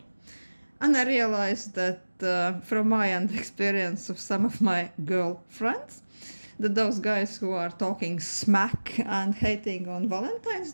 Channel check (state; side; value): inverted; both; correlation -1.00